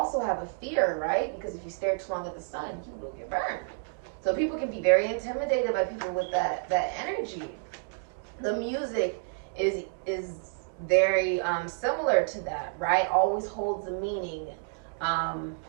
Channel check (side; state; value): left; silent; digital silence